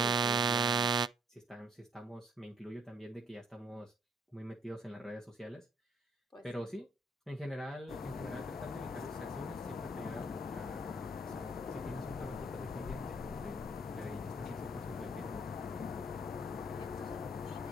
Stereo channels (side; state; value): both; normal; correlation 0.64